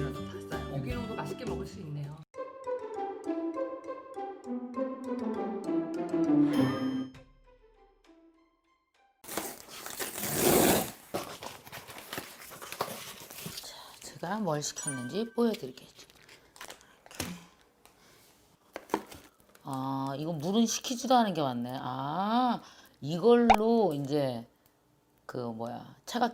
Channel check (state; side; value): identical; both; correlation 1.00